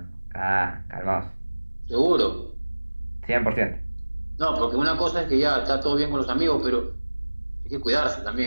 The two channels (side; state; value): both; inverted; correlation -1.00